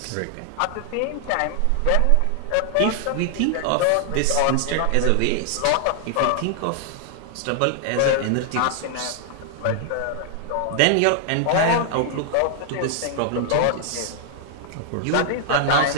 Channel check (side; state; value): both; different; correlation 0.00